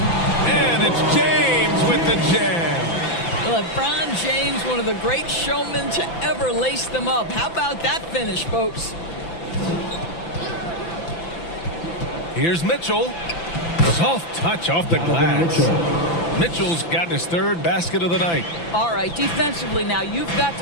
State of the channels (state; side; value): late; right; 5.9 ms